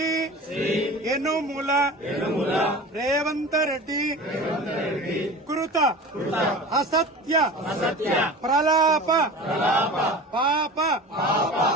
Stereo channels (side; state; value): both; normal; correlation 0.35